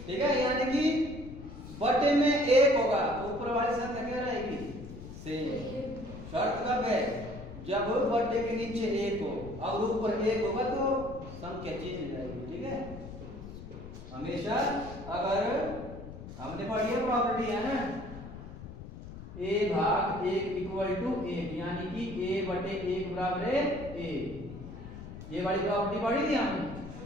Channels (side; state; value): left; noise; rumble, 12 dB below the sound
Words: ठीक है। यानी कि बटे में 1 होगा, ऊपर वाली संख्या क्या रहेगी सेम। शर्त कब है, जब बटे के नीचे 1 हो और ऊपर 1 होगा तो संख्या चेंज हो जाएगी, ठीक है। हमेशा अगर हमने पढ़ी है प्रॉपर्टी है ना, a भाग 1 इक्वल टू 1, यानी कि a बटे 1 बराबर है a, ये वाली प्रॉपर्टी पढ़ी थी हमने